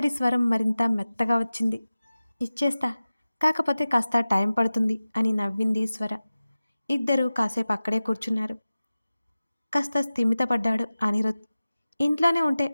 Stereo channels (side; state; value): both; inverted; correlation -0.96